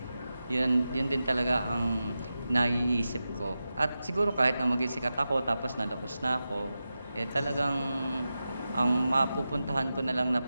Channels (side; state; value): both; inverted; correlation -0.92